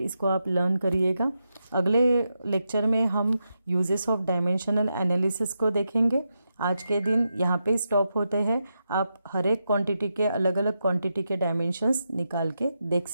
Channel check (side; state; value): both; inverted; correlation -0.86